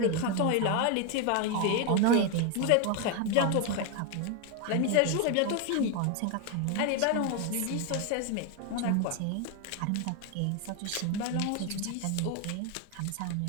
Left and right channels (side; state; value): both; different; correlation 0.01